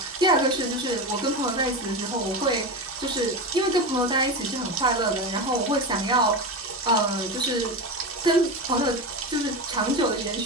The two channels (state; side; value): normal; both; correlation 0.21